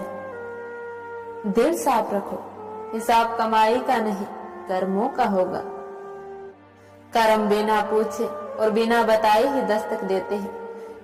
दिल साफ रखो, हिसाब कमाई का नहीं कर्मों का होगा। कर्म बिना पूछे और बिना बताए ही दस्तक देते हैं,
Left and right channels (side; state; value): both; identical; correlation 1.00